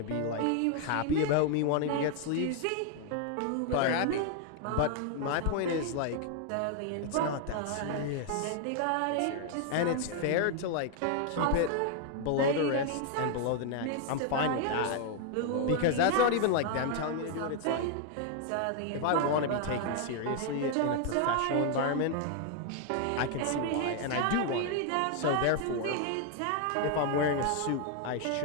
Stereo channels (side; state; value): both; different; correlation 0.00